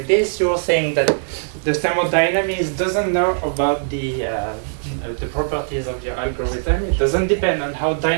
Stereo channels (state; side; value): silent; left; digital silence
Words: this. You're saying that the thermodynamics doesn't know about the properties of your algorithm. It doesn't depend on how